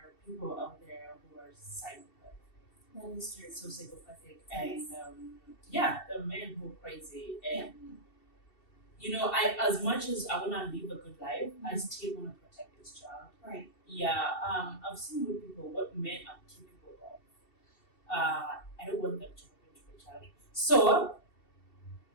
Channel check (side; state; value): right; late; 2.7 ms